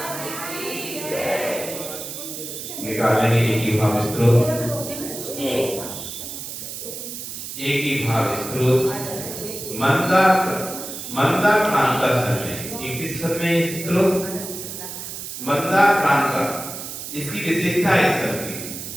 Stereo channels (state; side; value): noise; right; hiss, 8 dB below the sound